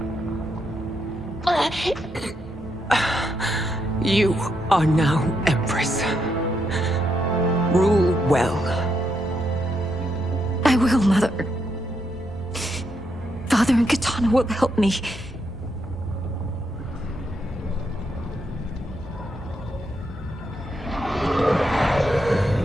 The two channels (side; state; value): both; normal; correlation 0.80